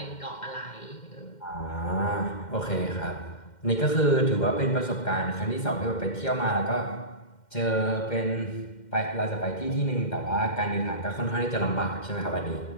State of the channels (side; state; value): right; late; 2.1 ms